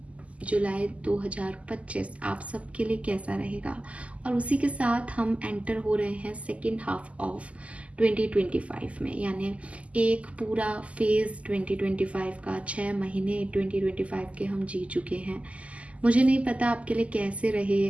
जुलाई 2025 आप सबके लिए कैसा रहेगा, और उसी के साथ हम एंटर हो रहे हैं सेकेंड हाफ ऑफ 2025 में, यानी एक पूरा फेज़ 2025 का, 6 महीने 2025 के हम जी चुके हैं। मुझे नहीं पता आपके लिए कैसे रहे,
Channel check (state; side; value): late; left; 0.065 ms